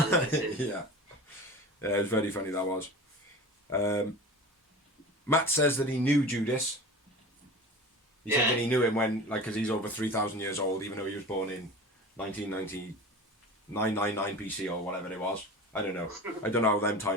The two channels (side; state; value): both; normal; correlation 0.35